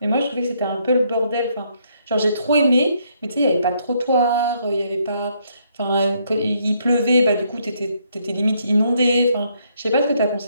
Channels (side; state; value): both; inverted; correlation -0.72